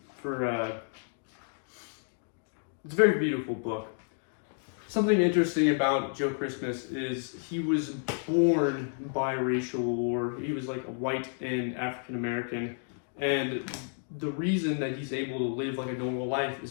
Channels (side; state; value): right; silent; 57 dB below the other